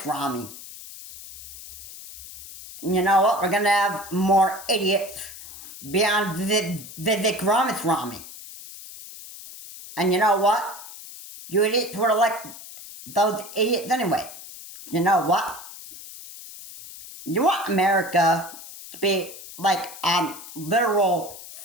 And you know what? We're going to have more idiots beyond Vivek Ramaswamy. And you know what? You idiots would elect those idiots anyway. You know what? You want America to be like on literal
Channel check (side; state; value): left; noise; hiss, 15 dB below the sound